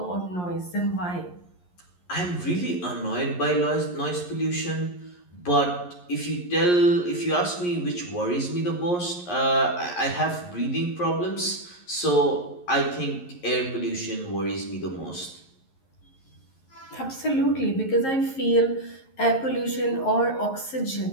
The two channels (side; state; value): right; late; 11 ms